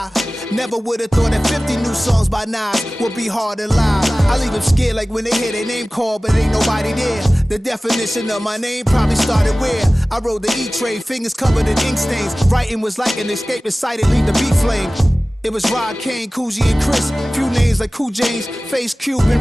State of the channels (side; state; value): both; normal; correlation 0.97